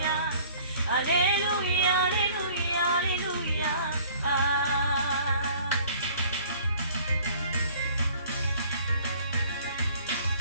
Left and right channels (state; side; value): inverted; both; correlation -0.53